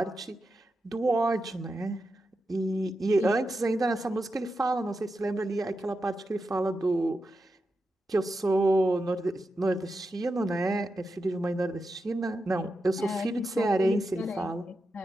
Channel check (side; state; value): both; normal; correlation 0.88